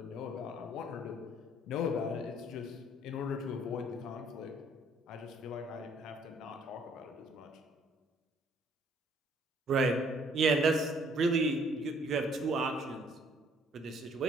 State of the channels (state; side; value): normal; both; correlation 0.62